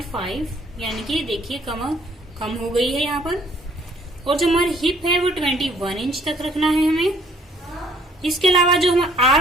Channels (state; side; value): normal; both; correlation 0.62